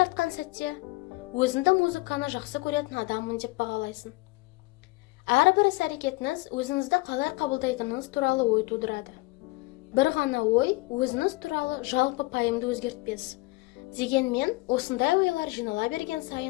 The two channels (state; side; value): quieter; right; 22.9 dB